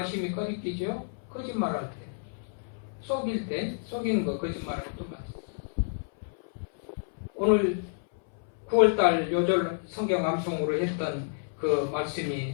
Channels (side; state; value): right; silent; 58 dB below the other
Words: 꺼리끼죠? 거짓말할 때. 속일 때, 속이는 거 거짓말할 때 똑같아요. 오늘 9월달 요절 성경 암송으로 했던 그 말씀이